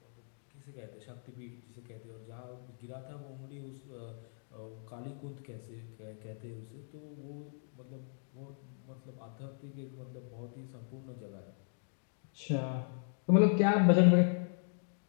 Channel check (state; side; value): silent; right; digital silence